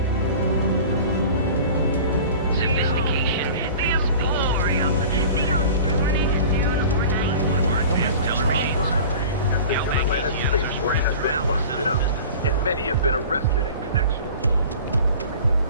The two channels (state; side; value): inverted; both; correlation -0.40